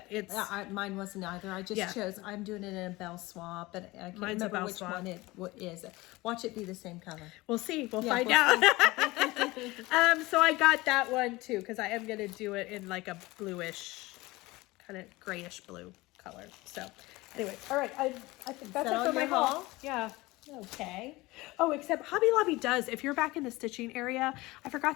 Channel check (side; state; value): right; quieter; 20.8 dB